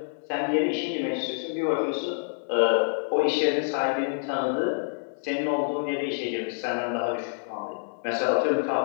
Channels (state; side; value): silent; right; digital silence